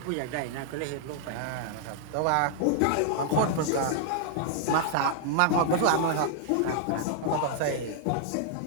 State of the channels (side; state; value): both; different; correlation -0.01